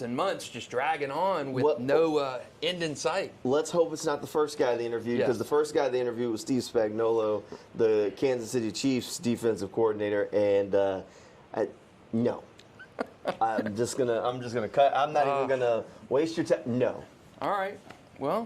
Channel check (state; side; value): identical; both; correlation 1.00